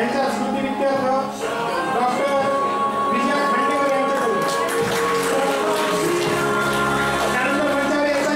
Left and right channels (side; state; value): both; identical; correlation 1.00